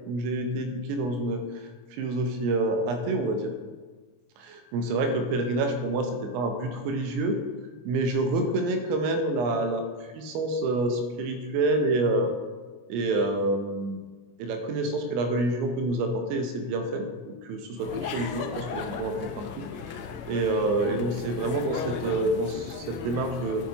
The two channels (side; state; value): left; late; 25 ms